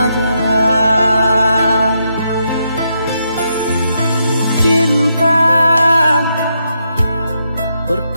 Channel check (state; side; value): inverted; both; correlation -0.80